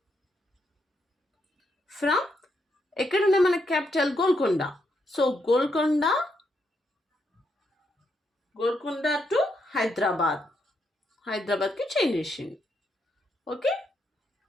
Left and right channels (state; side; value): normal; both; correlation 0.79